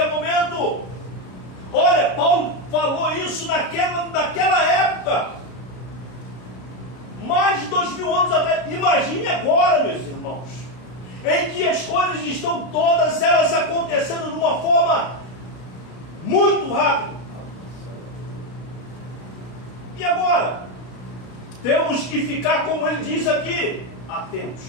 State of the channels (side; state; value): right; late; 33 ms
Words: momento. Olha, Paulo falou isso naquela época, mais de 2000 anos atrás. Imagine agora, meus irmãos, em que as coisas estão todas elas acontecendo de uma forma muito rápida. E agora? Temos que ficar, como ele diz aqui, atentos